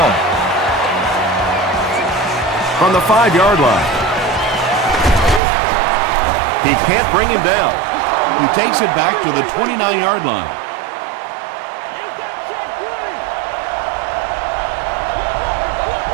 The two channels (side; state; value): left; drops out; at 5.4 s